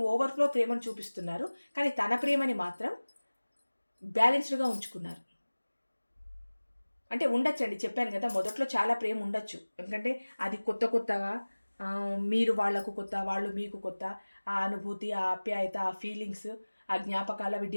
ఓవర్ఫ్లో ప్రేమను చూపిస్తున్నారు, కానీ తన ప్రేమని మాత్రం బ్యాలెన్స్డ్గా ఉంచుకున్నారు. అంటే ఉండొచ్చండి, చెప్పాను కదా, మొదట్లో చాలా ప్రేమ ఉండొచ్చు. ఎందుకంటే అది కొత్తగా మీరు వాళ్ళకు కొత్త, వాళ్ళు మీకు కొత్త. ఆ అనుభూతి, ఆ ఆప్యాయత, ఆ ఫీలింగ్స్, ఆ జ్ఞాపకాలు అవి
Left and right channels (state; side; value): inverted; both; correlation -1.00